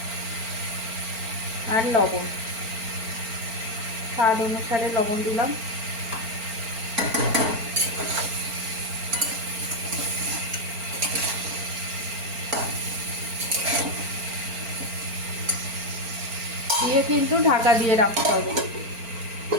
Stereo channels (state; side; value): late; left; 4.4 ms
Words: আর লবণ, স্বাদ অনুসারে লবণ দিলাম। দিয়ে কিন্তু ঢাকা দিয়ে রাখতে হবে।